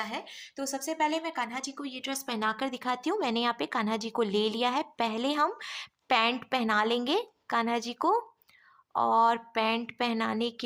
है। तो सबसे पहले मैं कान्हा जी को ये ड्रेस पहनाकर दिखाती हूँ। मैंने यहाँ पे कान्हा जी को ले लिया है। पहले हम पैंट पहना लेंगे कान्हा जी को, और पैंट पहनाने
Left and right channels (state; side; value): identical; both; correlation 1.00